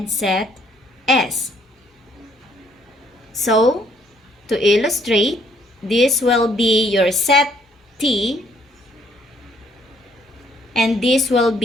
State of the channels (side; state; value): both; normal; correlation 0.66